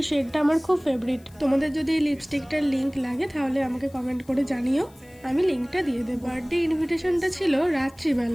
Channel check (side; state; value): left; noise; hiss, 28 dB below the sound